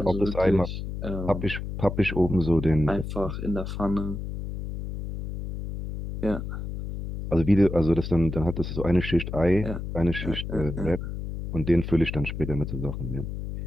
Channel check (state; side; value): noise; left; hum, 6 dB below the sound